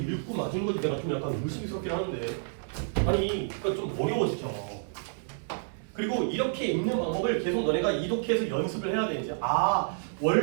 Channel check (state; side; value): silent; left; digital silence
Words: 맞은 거지 내가 좀 약간 의심스럽긴 하는데 아니 그러니까 좀 어려워 진짜. 그리고 이렇게 읽는 방법을 계속 너네가 이독해서 연습을 해야 돼 이제. 아